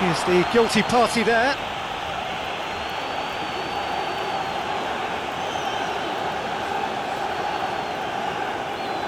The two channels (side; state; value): both; identical; correlation 1.00